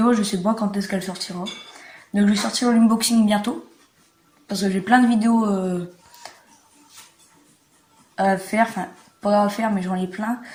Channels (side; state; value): both; identical; correlation 1.00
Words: je sais pas quand est-ce qu'elle sortira. Donc je vais sortir l'unboxing bientôt. Parce que j'ai plein de vidéos à faire. Enfin pas à faire mais j'en ai plein.